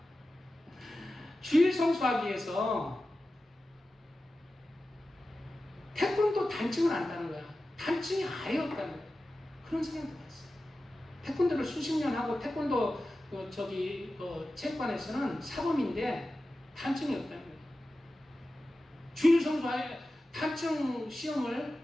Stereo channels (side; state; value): both; normal; correlation 0.94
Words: 주일 성수하기 위해서 태권도 단층을 안다는 거야. 단층이 아예 없다는 거야. 그런 생각도 봤어요. 태권도를 수십 년 하고 태권도 체육관에서는 사범인데 단층이 없다는 거예요. 주일 성수하에 단층 시험을